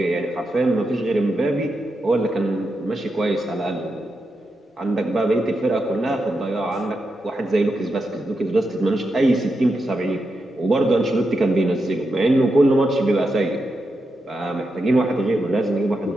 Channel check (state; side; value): normal; both; correlation 0.86